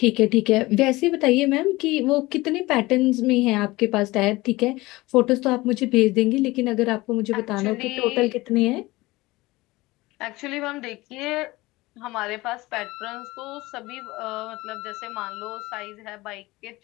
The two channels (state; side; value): quieter; right; 20.4 dB